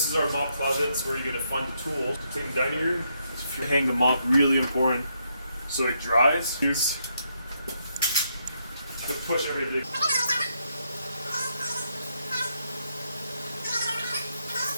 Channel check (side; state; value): both; inverted; correlation -0.77